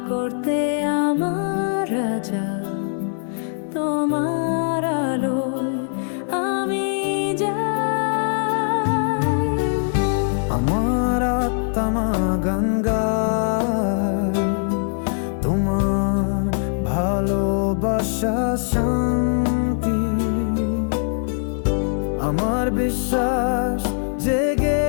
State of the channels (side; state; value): right; silent; 55 dB below the other